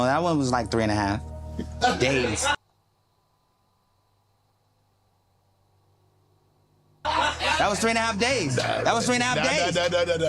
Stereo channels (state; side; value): identical; both; correlation 1.00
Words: that one was like 3.5 days. That was 3.5 days. That was 3.5 days